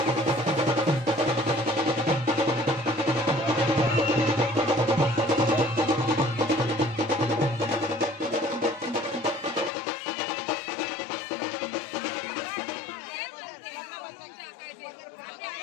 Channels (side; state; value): right; drops out; at 9.7 s